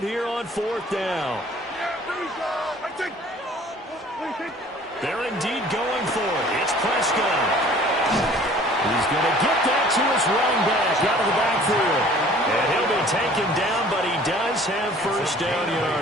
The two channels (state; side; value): normal; both; correlation 0.51